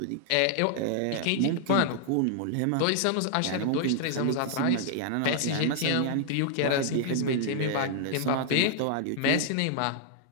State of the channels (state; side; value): different; both; correlation -0.01